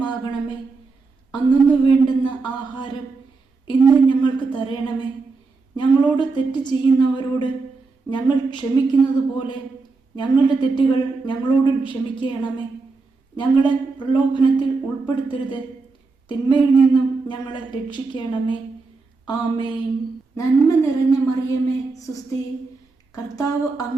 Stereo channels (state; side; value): quieter; left; 4.1 dB